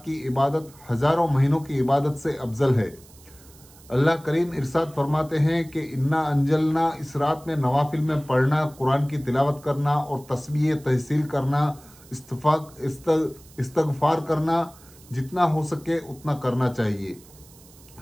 की इबादत हज़ारों महीनों की इबादत से अफजल है। अल्लाह करीम इरशाद फरमाते हैं कि इन्ना अंजलना, इस रात में नवाफिल में पढ़ना, कुरान की तिलावत करना और तस्बीह तहसील करना, इस्तगफार करना, जितना हो सके उतना करना चाहिए।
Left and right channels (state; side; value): noise; right; hiss, 24 dB below the sound